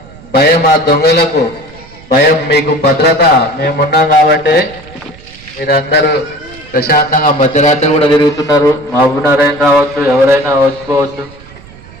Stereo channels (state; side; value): noise; right; rumble, 21 dB below the sound